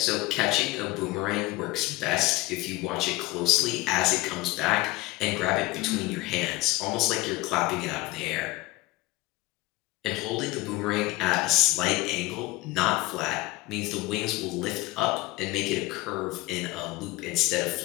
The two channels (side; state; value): right; quieter; 20.7 dB